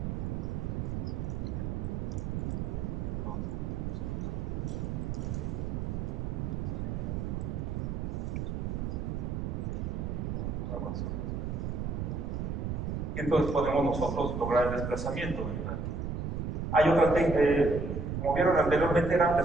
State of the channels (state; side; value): noise; right; rumble, 2 dB below the sound